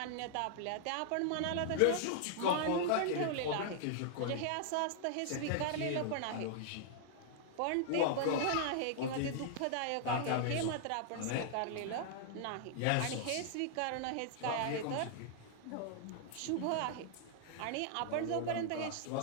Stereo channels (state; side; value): different; both; correlation -0.01